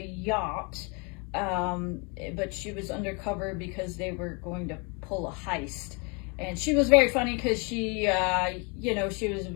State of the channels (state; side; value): quieter; right; 32.6 dB